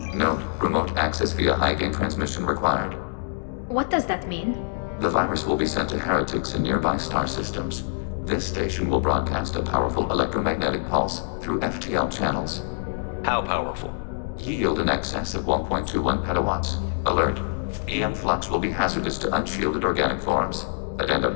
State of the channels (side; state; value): right; silent; digital silence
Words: Note, remote access via high-gain transmission required. What does that mean? The virus will be sent to heretics in nearby star systems. This station will broadcast a powerful electromagnetic pulse through FTL channels. How powerful? Yield in excess of 1.21 petawatts. Alert. EM flux will be hazardous to unshielded organic forms.